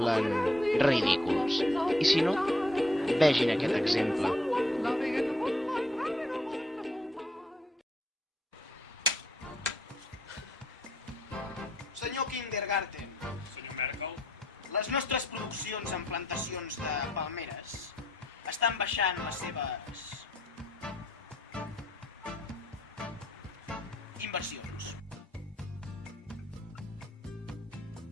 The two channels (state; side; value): normal; both; correlation 0.71